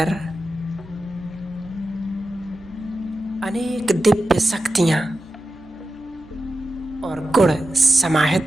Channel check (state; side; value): noise; left; hum, 24 dB below the sound